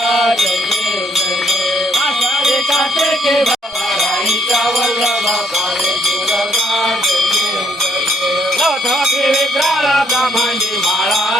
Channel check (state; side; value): normal; both; correlation 0.68